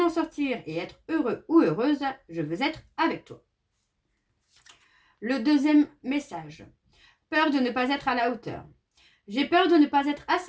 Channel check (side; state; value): both; identical; correlation 1.00